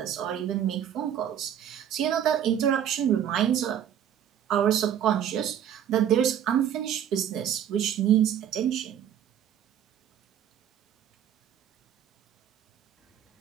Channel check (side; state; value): left; quieter; 9.7 dB